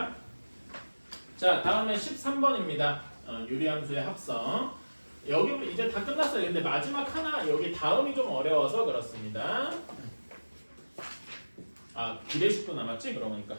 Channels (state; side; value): inverted; both; correlation -1.00